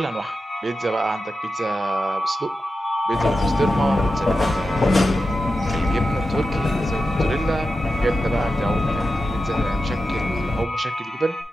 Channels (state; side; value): normal; both; correlation 0.91